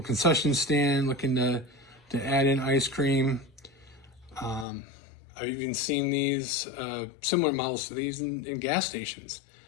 concession stand looking to add in ice cream. I've even seen these, similar models to these in gas stations.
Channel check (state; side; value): drops out; right; at 4.7 s